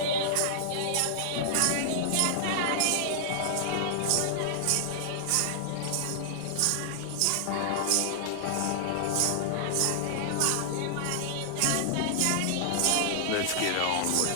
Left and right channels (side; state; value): both; different; correlation -0.01